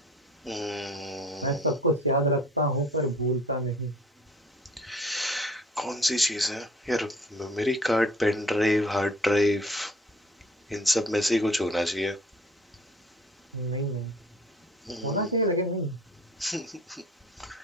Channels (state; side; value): normal; both; correlation 0.50